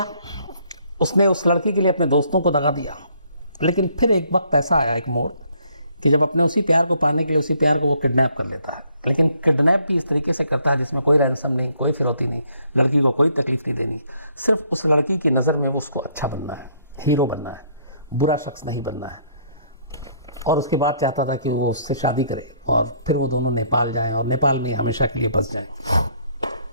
उसने उस लड़की के लिए, अपने दोस्तों को दगा दिया। लेकिन फिर एक वक्त ऐसा आया, एक मोड़, कि जब अपने उसी प्यार को पाने के लिए उसी प्यार को वो किडनैप कर लेता है। लेकिन किडनैप भी इस तरीके से करता है जिसमें कोई रैंसम नहीं, कोई फिरौती नहीं, लड़की को कोई तकलीफ नहीं देनी, सिर्फ उस लड़की की नज़र में वो उसको अच्छा बनना है, हीरो बनना है, बुरा शख्स नहीं बनना है। और उसके बाद चाहता था कि वो उससे शादी करे और फिर वो दोनों नेपाल जाएं और नेपाल में हमेशा के लिए बस जाएं।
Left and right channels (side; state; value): both; inverted; correlation -0.66